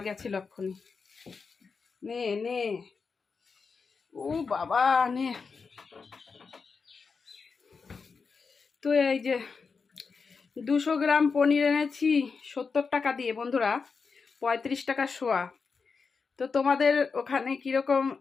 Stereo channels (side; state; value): right; quieter; 5.1 dB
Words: গেছিল এক্ষুনি। নে নে, ও বাবা নে। তো এই যে 200 গ্রাম পনির এনেছি 70 টাকা দিয়ে বন্ধুরা, 35 টাকা শোয়া। তো তোমাদের ওখানে কীরকম,